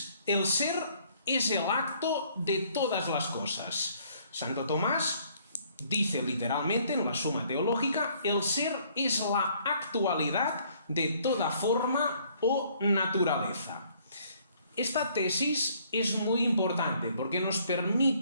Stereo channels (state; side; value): inverted; both; correlation -0.62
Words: el ser es el acto de todas las cosas. Santo Tomás dice literalmente en la Suma Teológica: el ser es la actualidad de toda forma o naturaleza. Esta tesis es muy importante porque nos